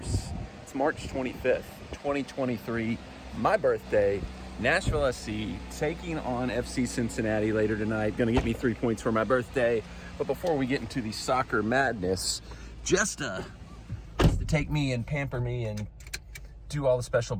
it's March 25th, 2023, my birthday, Nashville SC taking on FC Cincinnati later tonight. Gonna get me 3 points for my birthday. But before we get into the soccer madness, just to take me and pamper me and do all the special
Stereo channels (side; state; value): both; identical; correlation 1.00